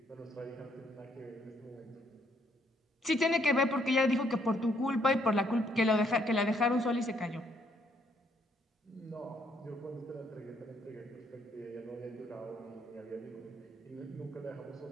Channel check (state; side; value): normal; both; correlation 0.69